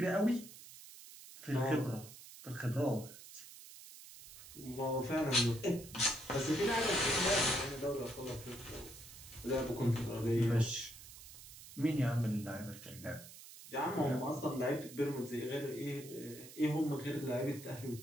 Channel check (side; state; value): right; noise; hiss, 16 dB below the sound